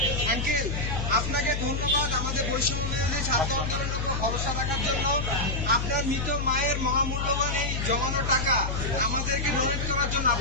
আঙ্কেল আপনাকে ধন্যবাদ আমাদের বৈষম্য ছাত্র আন্দোলনের উপর ভরসা রাখার জন্য। আপনার মৃত মায়ের মহামূল্যবান এই জমানো টাকা আমাদেরকে ডোনেট করার জন্য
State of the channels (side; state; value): left; noise; hum, 2 dB below the sound